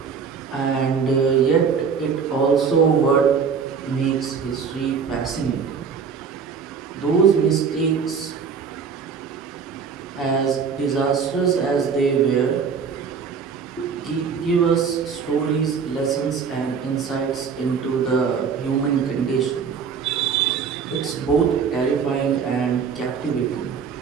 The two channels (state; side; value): quieter; left; 6.2 dB